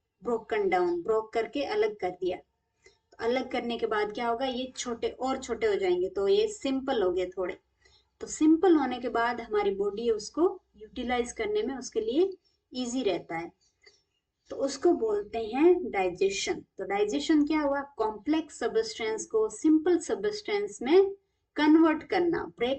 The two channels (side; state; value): both; identical; correlation 1.00